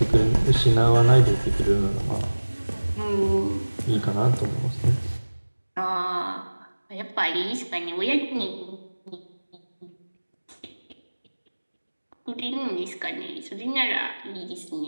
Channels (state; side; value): inverted; both; correlation -1.00